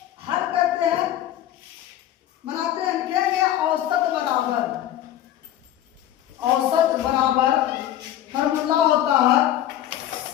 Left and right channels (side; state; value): right; quieter; 12.3 dB